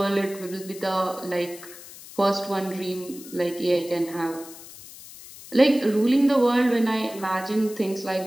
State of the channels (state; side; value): noise; left; hiss, 17 dB below the sound